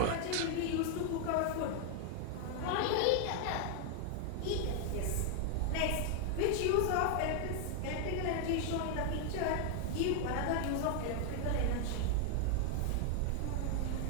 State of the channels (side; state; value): both; different; correlation 0.00